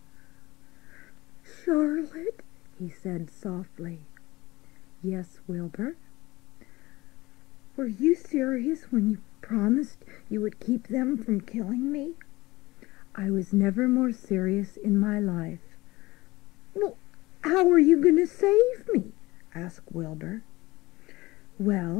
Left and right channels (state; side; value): quieter; right; 20.1 dB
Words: "Charlotte," he said softly. "Yes, Wilbur?" "Were you serious when you promised you would keep them from killing me? I was never more serious in my life. Well, how are you going to save me? Asked Wilbur.